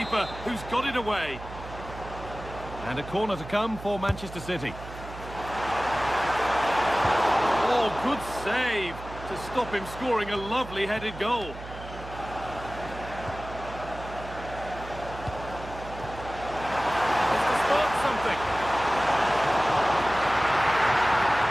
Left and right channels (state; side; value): noise; right; hum, 13 dB below the sound